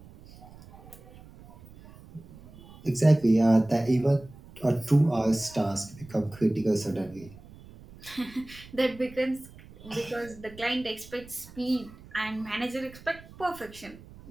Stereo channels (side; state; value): right; noise; rumble, 20 dB below the sound